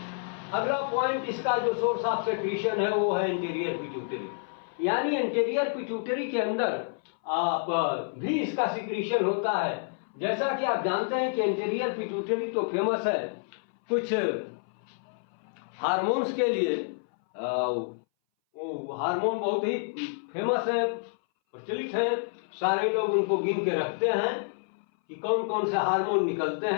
अगला पॉइंट, इसका जो सोर्स ऑफ सिक्रीशन है वो है इंटीरियर पिट्यूटरी। यानी इंटीरियर पिट्यूटरी के अंदर भी इसका सिक्रीशन होता है। जैसा कि आप जानते हैं कि इंटीरियर पिट्यूटरी तो फेमस है कुछ हार्मोन्स के लिए। हार्मोन बहुत ही फेमस है, प्रचलित है। सारे लोग उनको गिन के रखते हैं कि कौन कौन से हार्मोन निकलते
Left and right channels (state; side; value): silent; right; 59 dB below the other